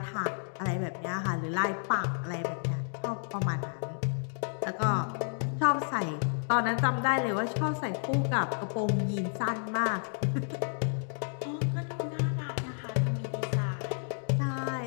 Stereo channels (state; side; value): silent; right; digital silence